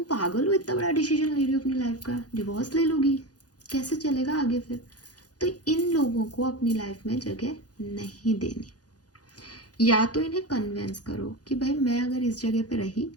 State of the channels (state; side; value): late; right; 0.68 ms